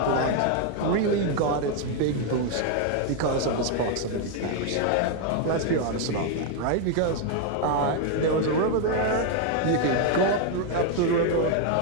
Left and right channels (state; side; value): different; both; correlation 0.01